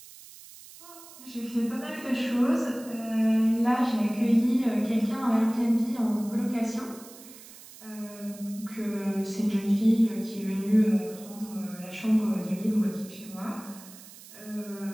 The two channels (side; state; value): right; noise; hiss, 19 dB below the sound